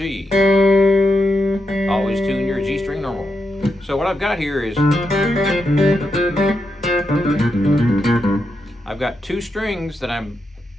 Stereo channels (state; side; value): normal; both; correlation 0.84